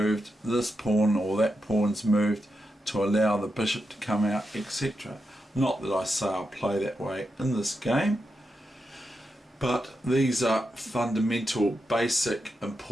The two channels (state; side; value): normal; both; correlation 0.87